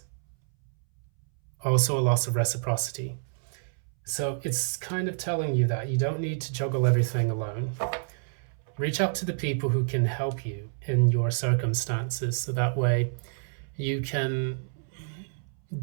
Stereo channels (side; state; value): left; silent; 59 dB below the other